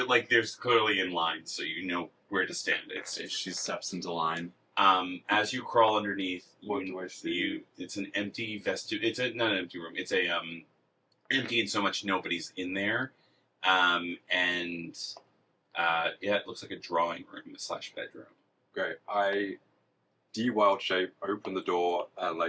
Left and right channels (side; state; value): both; identical; correlation 1.00